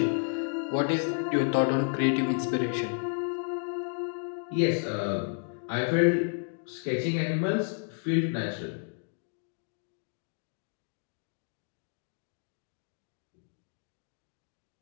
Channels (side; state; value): right; silent; 55 dB below the other